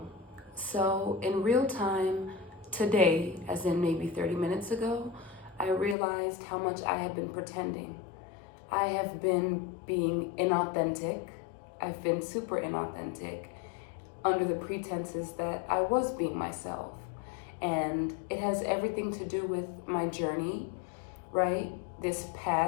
So, in real time today, as in maybe 30 minutes ago, I realized how much I had been pretending. I have been being inauthentic. I've been super inauthentic under the pretenses that I was being myself. And it has everything to do with my journey, right? This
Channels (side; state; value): right; drops out; at 6.0 s